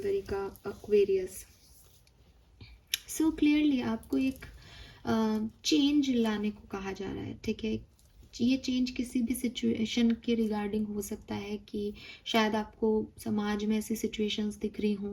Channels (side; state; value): both; identical; correlation 1.00